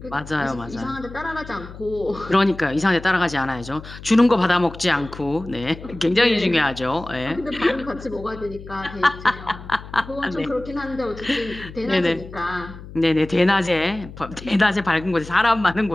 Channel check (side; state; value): left; noise; hum, 15 dB below the sound